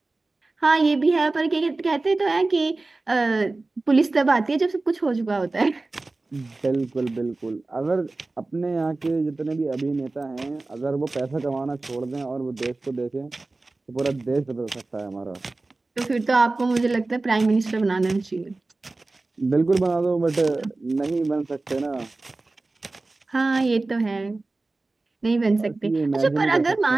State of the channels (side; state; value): left; quieter; 3.3 dB